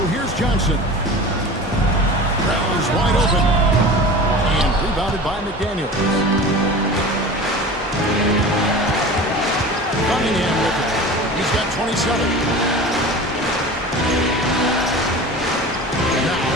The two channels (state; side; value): normal; both; correlation 0.35